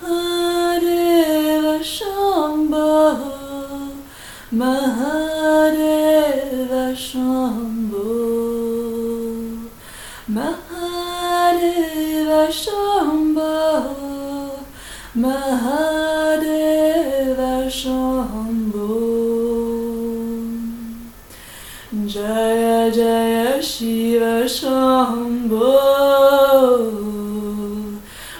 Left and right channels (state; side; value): identical; both; correlation 1.00